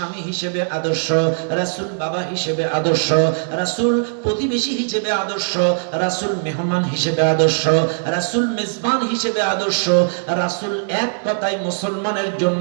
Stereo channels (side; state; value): left; silent; digital silence